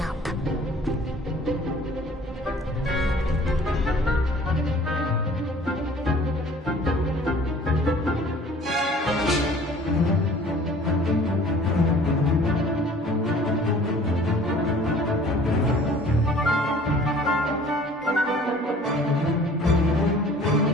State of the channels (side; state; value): both; normal; correlation 0.50